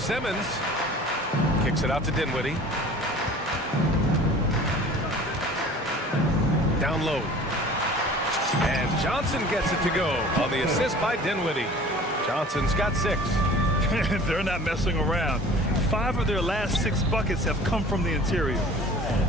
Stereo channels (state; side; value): normal; both; correlation 0.45